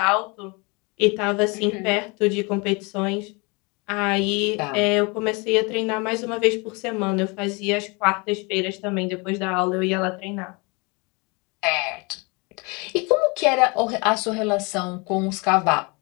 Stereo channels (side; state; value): right; quieter; 29.1 dB